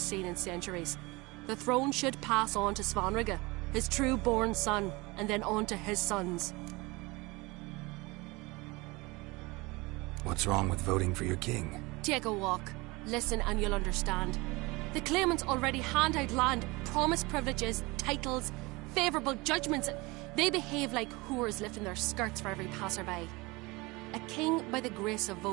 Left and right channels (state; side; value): quieter; left; 23.9 dB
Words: in centuries. The throne should pass on to Svanrig, his true-born son, and then on to his sons. What's wrong with voting for your king? Take a walk. Listen and you'll understand. The claimants already hand out land, promise privileges, titles, favourable judgments. They behave like whores lifting their skirts for every passerby. A king by the grace of